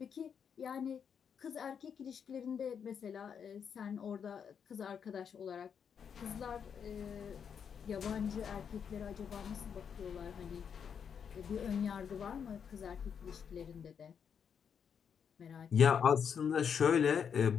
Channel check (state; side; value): quieter; right; 7.3 dB